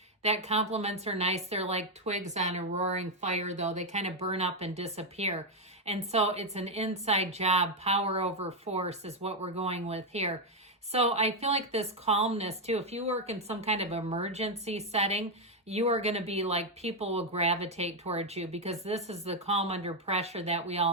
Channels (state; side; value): normal; both; correlation 0.03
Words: that compliments are nice. They're like twigs on a roaring fire, though. They kind of burn up and disappear. And so it's an inside job. Power over force is what we're going with here. So I feel like this calmness too, if you work in some kind of emergency setting, you are going to be like, people will gravitate towards you because this is the calm under pressure that we